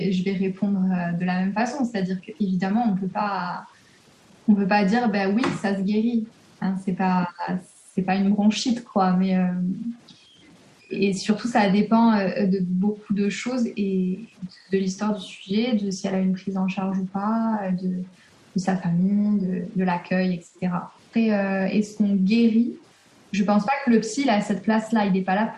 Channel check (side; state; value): both; identical; correlation 1.00